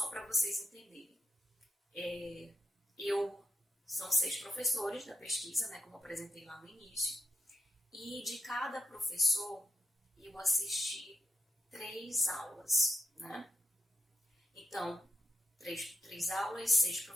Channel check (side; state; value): both; normal; correlation 0.81